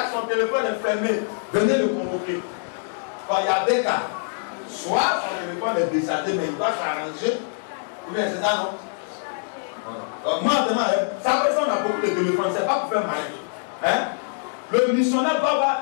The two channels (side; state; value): right; silent; digital silence